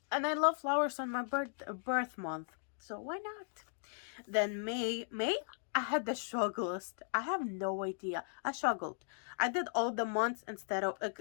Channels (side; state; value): right; silent; digital silence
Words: and I love flowers on my birth month, so why not? Then May, I had the strugglest. I have no idea. I struggled. I did all the months instead of